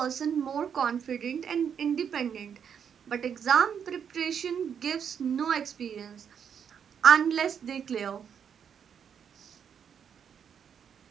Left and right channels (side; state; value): left; quieter; 7.7 dB